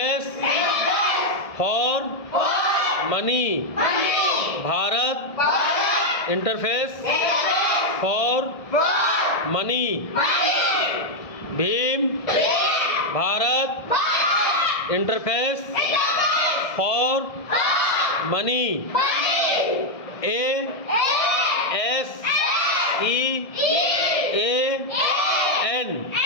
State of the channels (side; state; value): right; late; 1.7 ms